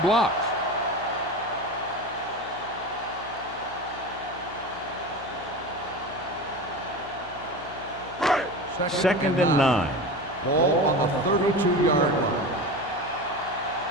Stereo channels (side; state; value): left; noise; hum, 18 dB below the sound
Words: Second and 9. Ball on the 32-yard line.